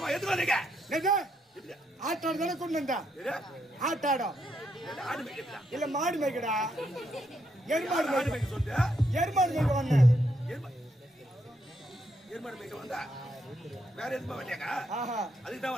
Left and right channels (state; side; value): normal; both; correlation 0.78